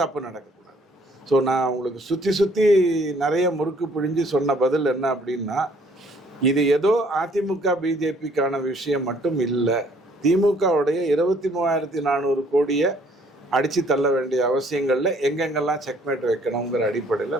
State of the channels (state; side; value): normal; both; correlation 0.61